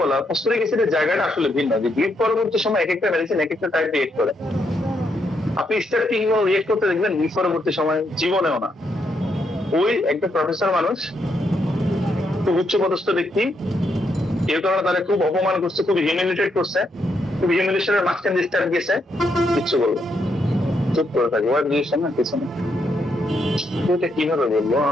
বলা, ফসফরিক অ্যাসিডের জায়গাটা আসলে ভিন্ন, যে গ্রিপ পরবর্তী সময় এক একটা মেডিসিন এক একটা টাইপ রিয়েক্ট করে। আপনি স্টার্টিং রিয়েক্ট করতে দেখবেন, গ্রিপ পরবর্তী সময় জীবনেও না। ওই একটা প্রফেসর মানুষ, খুব উচ্চপদস্থ ব্যক্তি, এর কারণে তারা খুব অপমান করছে, খুব হিউমিলিটেট করছে, খুব হিউমিলিটেশনের মাঝখানে স্টার্ট গেছে, কিচ্ছু বলবো, চুপ করে থাকবো, আর দিয়েছে না কিছু না। এটা কিভাবে বলবো,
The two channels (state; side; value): normal; both; correlation 0.78